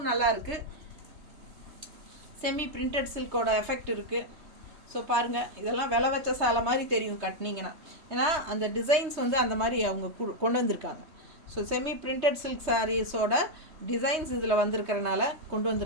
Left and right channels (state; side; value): late; left; 3.2 ms